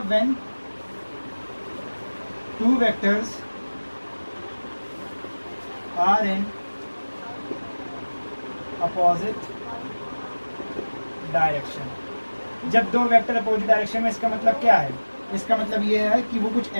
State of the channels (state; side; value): inverted; both; correlation -1.00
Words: when two vectors are in opposite direction. जब दो वेक्टर अपोजिट डायरेक्शन में, इसका मतलब क्या है? इसका मतलब ये है कि वो कुछ